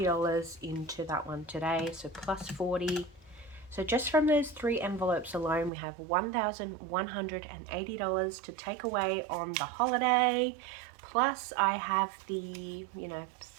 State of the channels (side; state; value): left; drops out; at 5.7 s